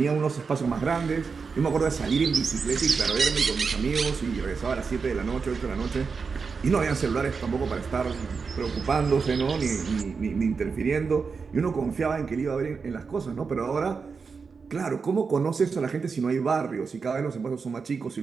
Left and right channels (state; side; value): quieter; left; 5.2 dB